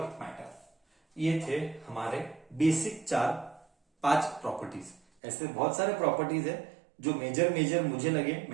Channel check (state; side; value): drops out; left; at 5.0 s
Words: matter. ये थे हमारे बेसिक पांच प्रॉपर्टीज। ऐसे बहुत सारे प्रॉपर्टीज है जो मेजर मुझे लगे